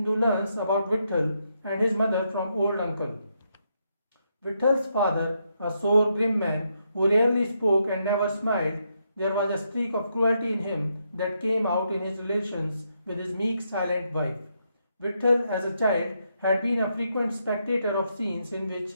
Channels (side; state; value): both; inverted; correlation -0.79